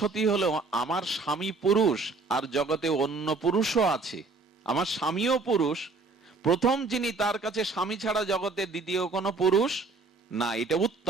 হলো আমার স্বামী পুরুষ আর জগতে অন্য পুরুষও আছে, আমার স্বামীও পুরুষ, প্রথম যিনি, তার কাছে স্বামী ছাড়া জগতে দ্বিতীয় কোনো পুরুষ না, এটা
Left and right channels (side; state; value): left; quieter; 3.8 dB